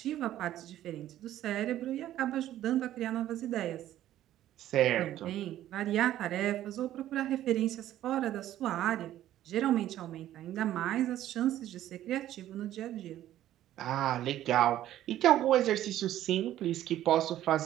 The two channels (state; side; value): quieter; left; 12.9 dB